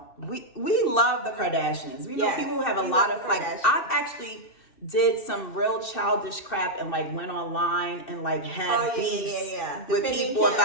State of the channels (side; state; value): right; late; 2.7 ms